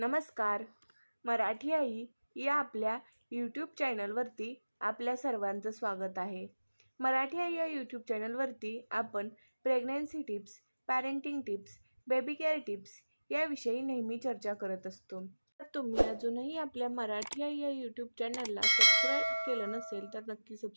मराठी आई या आपल्या यूट्यूब चॅनलवरती आपल्या सर्वांचं स्वागत आहे. मराठी आई या यूट्यूब चॅनलवरती आपण pregnancy tips, parenting tips, baby care tips याविषयी नेहमी चर्चा करत असतो. तर तुम्ही अजूनही आपल्या मराठी आई या यूट्यूब चॅनलला सबस्क्राईब केलं नसेल तर नक्की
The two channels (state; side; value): inverted; both; correlation -1.00